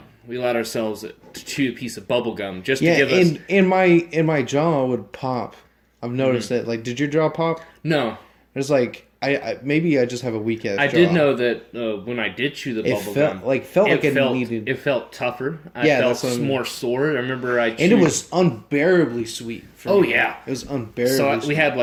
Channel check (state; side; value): identical; both; correlation 1.00